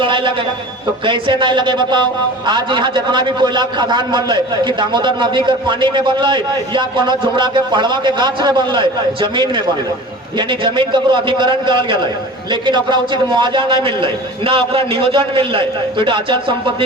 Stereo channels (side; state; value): both; normal; correlation 0.39